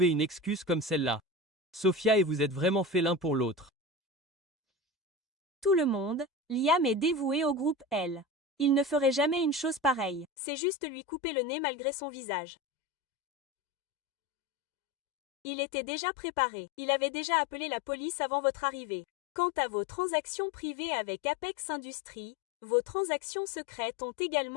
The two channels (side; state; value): right; drops out; at 10.2 s